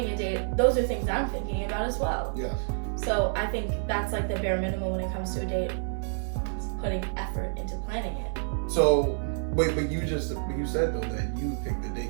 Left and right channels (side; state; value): left; silent; 59 dB below the other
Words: a date, those are things I'm thinking about as well. Yes. So I think that's like the bare minimum when it comes to a date. It's putting effort into planning it. So, wait, but you said though that you picked the